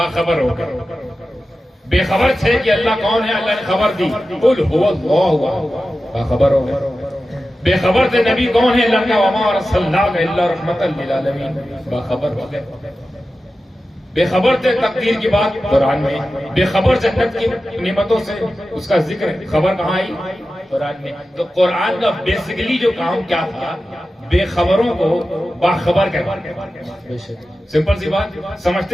ہو گئے. بے خبر تھے کہ اللہ کون ہے، اللہ نے خبر دی، قل هو اللہ، باخبر ہو گئے. بے خبر تھے نبی کون ہے، اللہ کا وما ارسلناک الا رحمتا للعالمین، باخبر ہو گئے. بے خبر تھے تقدیر کی بات قرآن میں، بے خبر جنت کی نعمتوں سے اس کا ذکر، خبر کہاں آئی، قرآن میں. تو قرآن کا بیسیکلی جو کام کیا تھا، بے خبروں کو باخبر کرنا. سمپل سی بات، سمجھتے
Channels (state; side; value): normal; both; correlation 0.93